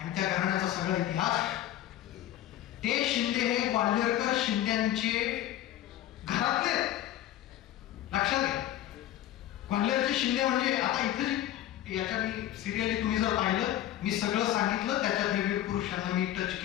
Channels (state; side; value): quieter; right; 13.0 dB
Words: त्या घराण्याचा सगळा इतिहास. ते शिंदे हे ग्वाल्हेरकर शिंद्यांचे घरातले लक्षात घ्या. ग्वाल्हेरचे शिंदे म्हणजे आता इथे याच्या मी सिरियली तुम्ही जर पाहिलं, मी सगळं सांगितलं त्याच्यात हे वीर पुरुषांना मी टच